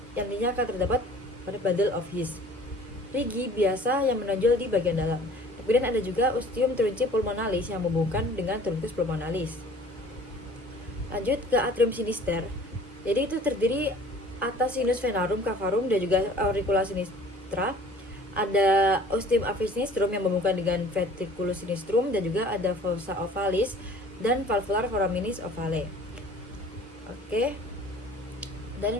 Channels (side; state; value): both; normal; correlation 0.49